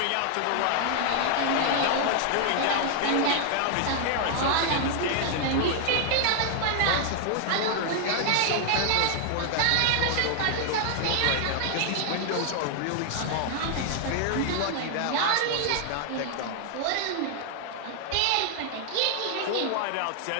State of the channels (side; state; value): both; different; correlation 0.00